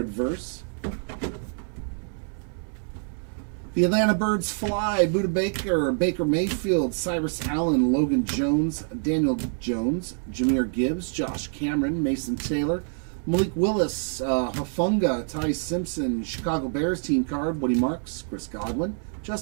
Verse. The Atlanta Birds fly, Buda Baker, Baker Mayfield, Cyrus Allen, Logan Jones, Daniel Jones, Jahmyr Gibbs, Josh Cameron, Mason Taylor, Malik Willis, Hafunga, Ty Simpson, Chicago Bears team card, Woody Marks, Chris Godwin,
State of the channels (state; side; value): silent; left; 56 dB below the other